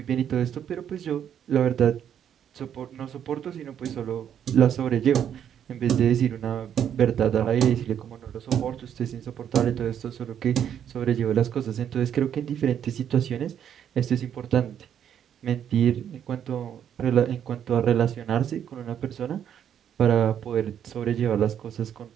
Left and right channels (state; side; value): quieter; left; 9.2 dB